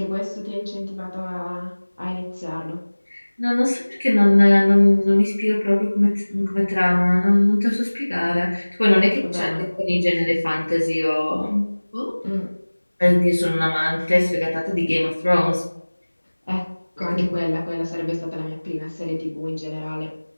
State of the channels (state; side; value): inverted; both; correlation -1.00